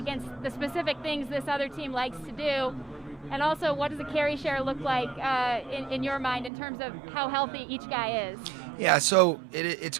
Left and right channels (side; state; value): left; drops out; at 6.5 s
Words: the specific things this other team likes to do? And also, what does the carry share look like in your mind in terms of how healthy each guy is? Yeah, so it's